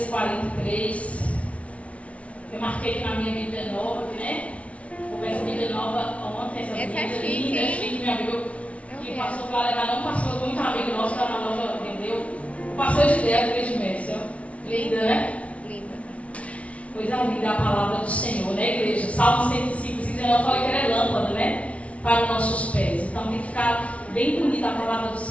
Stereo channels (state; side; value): late; right; 0.064 ms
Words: 43. Eu marquei aqui na minha Bíblia nova, né? Começa a Bíblia nova ontem. Essa é Bíblia chique, linda, hein? chique, meu amigo. Que passou para levar, não passou muito amigo nosso que está na loja, entendeu? Passou de ideia, fez de mestre. Linda, né? Linda. Coisa linda a palavra do Senhor, né, igreja? Salmo 105, 19, eu falei que era lâmpada, né? Para os nossos pés. Então tem que ficar bem bonita a palavra do